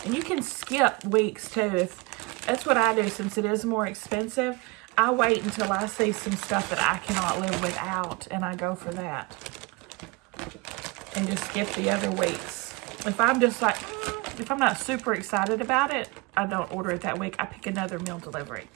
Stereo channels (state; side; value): quieter; left; 26.5 dB